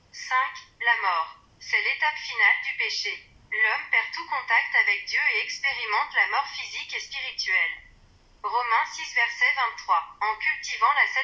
5. La mort. C'est l'étape finale du péché. L'homme perd tout contact avec Dieu et expérimente la mort physique et spirituelle. Romains 6 verset 23. En cultivant la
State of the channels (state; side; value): identical; both; correlation 1.00